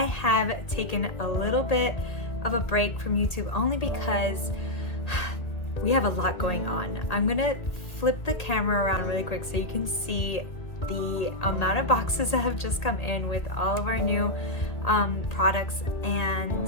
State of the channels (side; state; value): right; late; 2.0 ms